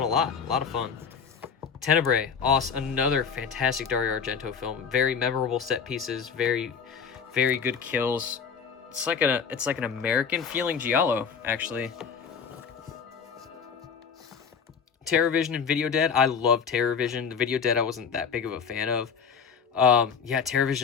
a lot. A lot of fun. Tenebrae, another fantastic Dario Argento film. Very memorable set pieces, very good kills. It's like an American feeling giallo, actually. TerrorVision and Video Dead. I love TerrorVision. The Video Dead I wasn't that big of a fan of. Yeah,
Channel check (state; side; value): quieter; right; 6.5 dB